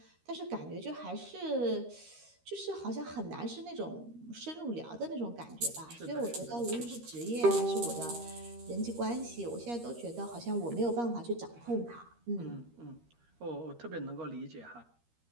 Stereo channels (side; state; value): left; late; 13 ms